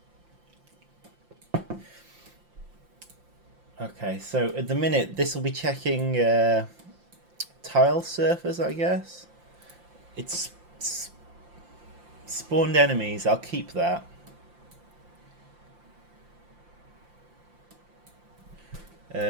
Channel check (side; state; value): left; late; 5.8 ms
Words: Okay, so at the minute this will be checking tile surfers, I guess. It's spawned enemies. I'll keep that.